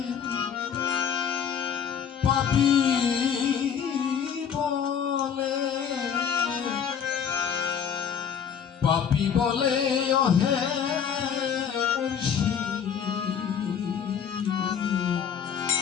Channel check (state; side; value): quieter; right; 7.7 dB